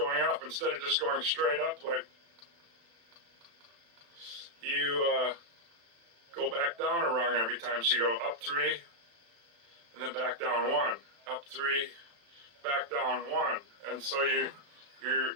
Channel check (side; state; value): left; late; 35 ms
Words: up instead of just going straight up. Like you go back down a rung every time. So you go up 3, and then back down 1, up 3, back down 1, and so it